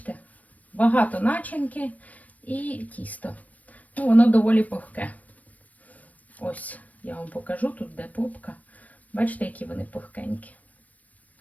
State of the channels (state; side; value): late; right; 0.072 ms